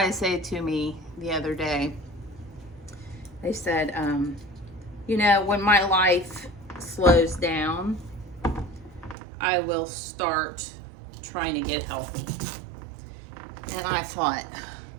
say to me the other day, they said, you know, when my life slows down, I will start trying to get healthy. And I thought,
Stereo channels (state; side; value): drops out; left; at 9.2 s